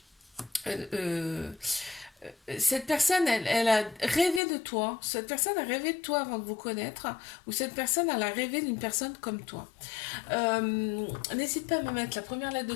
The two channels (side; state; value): right; drops out; at 4.4 s